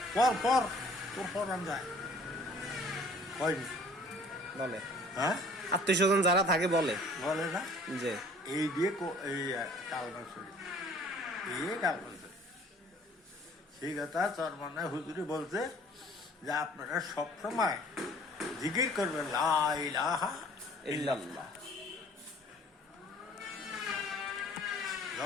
পর তোর ফরান যায় হয়নি বলে। হ্যাঁ, আত্মীয় স্বজন যারা থাকে বলে না যে এই দিয়ে এই কালমা শরীর এই কালমা শরীর। সেই কথা চরমানা হুজুরি বলছে যে আপনারা সবসময় জিকির করবেন লা ইলাহা ইল্লাল্লাহ।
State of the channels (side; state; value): both; normal; correlation 0.53